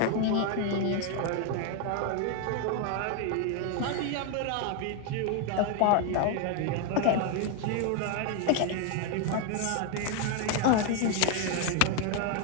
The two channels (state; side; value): different; both; correlation 0.01